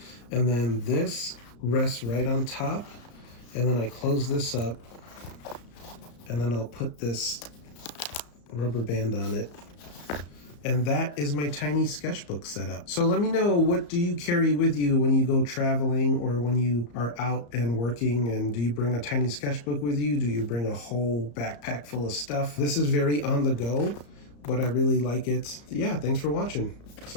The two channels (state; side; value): late; right; 34 ms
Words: And then this rests right on top. And then I close this up. And then I'll put this rubber band on it. And that is my tiny sketchbook setup. So let me know, what do you carry with you when you go traveling or when you are out and working? And do you bring a tiny sketchbook with you? Do you bring a whole backpack full of stuff? This is very on the go, but I really like it. Yeah, thanks for watching.